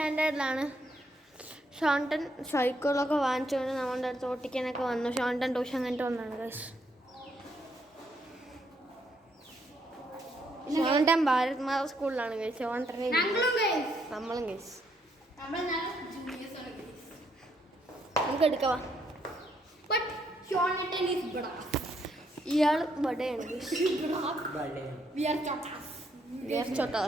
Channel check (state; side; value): normal; both; correlation 0.74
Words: ഷോണ്ടൻ സൈക്കിളൊക്കെ വാങ്ങിച്ചുകൊണ്ട് നമ്മുടെ അടുത്ത് ഓട്ടിക്കാനൊക്കെ വന്നു. ഷോണ്ടൻ ട്യൂഷൻ കഴിഞ്ഞിട്ട് വന്നാണ് ഗൈസ്. ഷോണ്ടൻ ഭാരത് മാത സ്കൂളിലാണ് ഗൈസ്. ഷോണ്ടൻ നമ്മളും ഗൈസ്. നമുക്ക് എടുക്കാം. ഇയാൾ ബഡയാണ് ഗൈസ്.